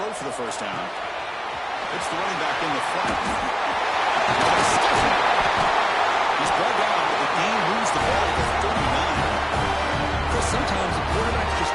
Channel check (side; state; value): both; identical; correlation 1.00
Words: for the first down. It's the running back in the front. He's brought down, but the game moves the ball to 39. Sometimes the quarterback's just